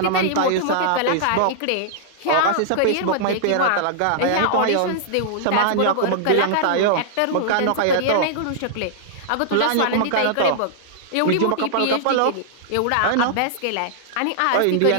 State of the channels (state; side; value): different; both; correlation -0.01